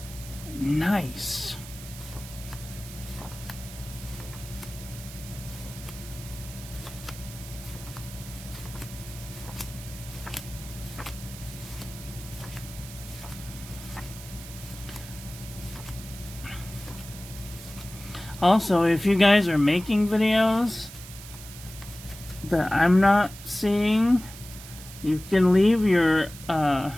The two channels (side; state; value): right; noise; hiss, 15 dB below the sound